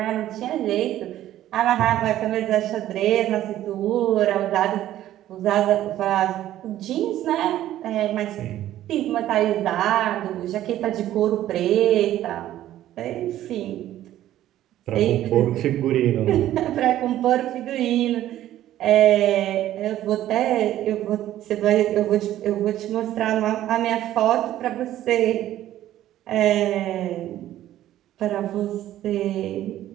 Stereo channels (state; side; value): quieter; left; 13.1 dB